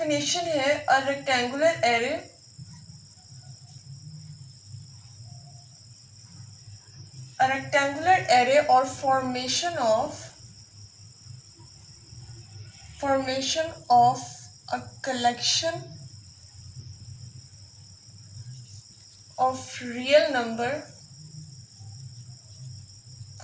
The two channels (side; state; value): both; identical; correlation 1.00